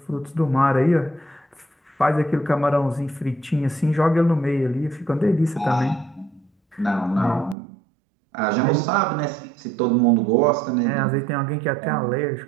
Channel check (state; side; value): drops out; left; at 7.6 s